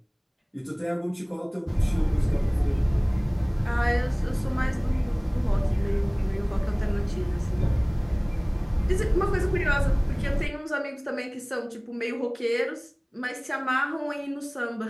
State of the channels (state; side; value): identical; both; correlation 1.00